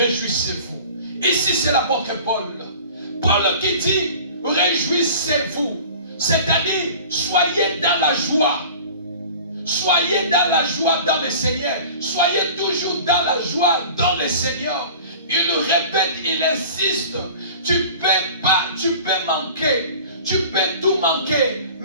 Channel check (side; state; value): both; inverted; correlation -0.42